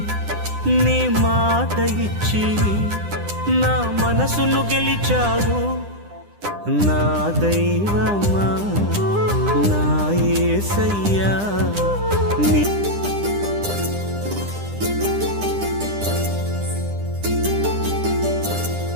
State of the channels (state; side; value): late; left; 9.9 ms